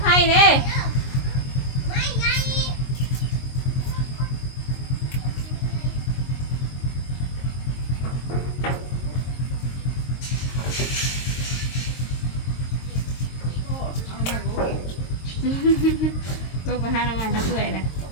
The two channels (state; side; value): late; right; 22 ms